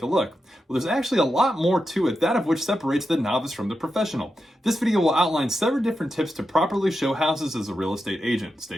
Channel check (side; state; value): both; normal; correlation 0.88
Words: a look. Well, there's actually a lot more to it, that of which separates the novice from the professional. This video will outline several different tips to properly show houses as a real estate agent.